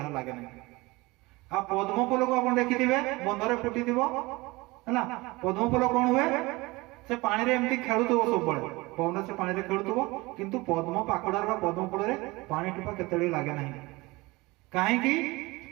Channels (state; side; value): quieter; left; 22.5 dB